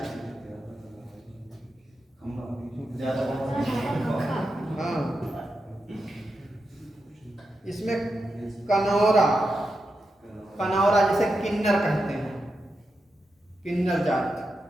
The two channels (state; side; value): normal; both; correlation 0.88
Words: हाँ, इसमें कनौरा, कनौरा जैसे किन्नर कहते हैं, किन्नर जाति।